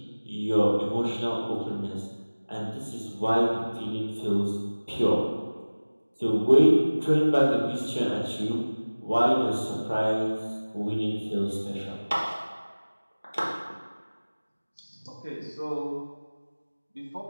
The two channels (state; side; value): inverted; both; correlation -1.00